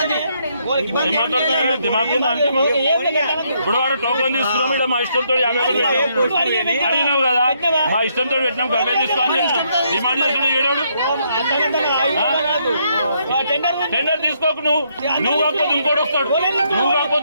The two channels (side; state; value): both; inverted; correlation -0.73